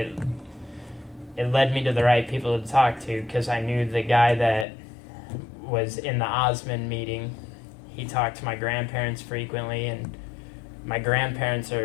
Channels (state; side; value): drops out; right; at 4.7 s